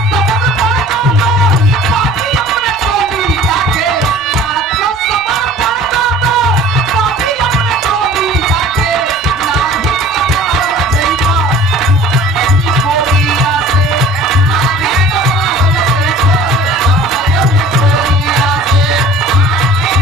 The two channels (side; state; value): both; normal; correlation 0.46